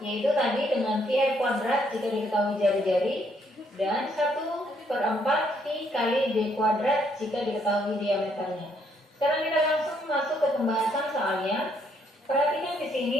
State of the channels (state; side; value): normal; both; correlation 0.70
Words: yaitu tadi dengan VR kuadrat jika diketahui jari-jari dan 1/4 V kali D kuadrat jika diketahui diameternya. Sekarang kita langsung masuk ke pembahasan soalnya. Perhatikan di